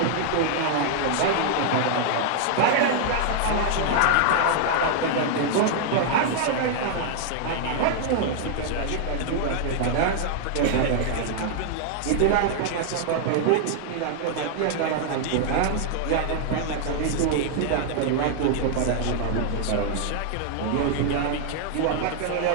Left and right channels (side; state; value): both; different; correlation 0.00